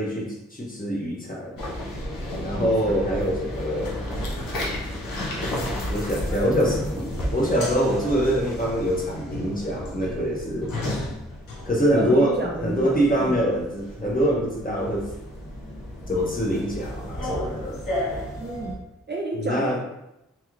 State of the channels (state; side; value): normal; both; correlation 0.57